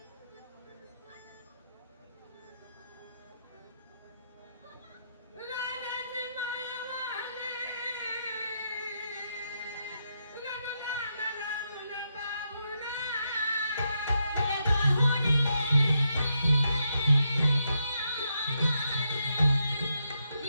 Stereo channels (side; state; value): both; inverted; correlation -0.82